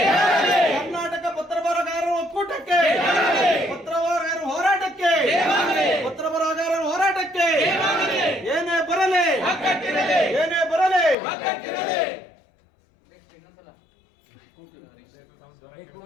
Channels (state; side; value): drops out; right; at 11.2 s